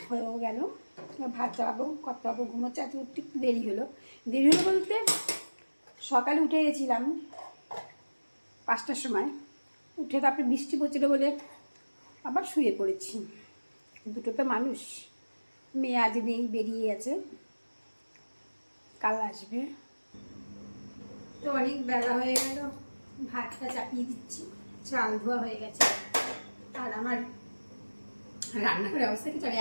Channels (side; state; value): both; inverted; correlation -1.00